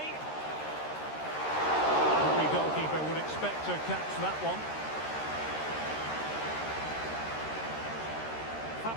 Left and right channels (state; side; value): late; right; 13 ms